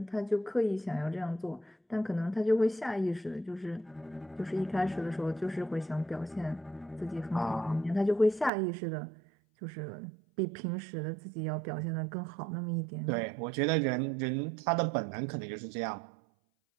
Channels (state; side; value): drops out; left; at 8.5 s